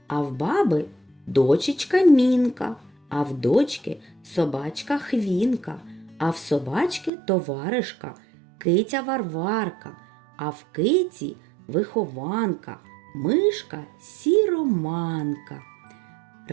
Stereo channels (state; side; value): drops out; left; at 7.1 s